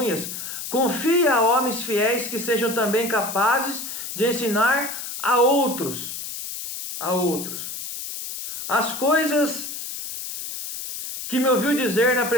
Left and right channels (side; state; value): left; noise; hiss, 7 dB below the sound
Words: confia a homens fiéis que sejam também capazes de ensinar a outros. As coisas que me ouviu dizer na